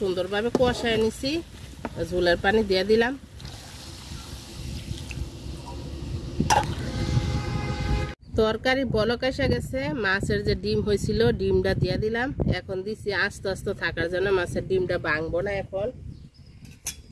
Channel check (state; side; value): identical; both; correlation 1.00